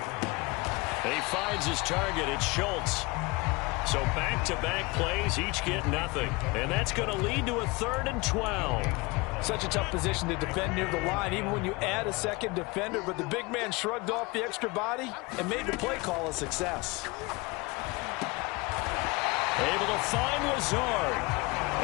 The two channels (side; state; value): right; quieter; 25.1 dB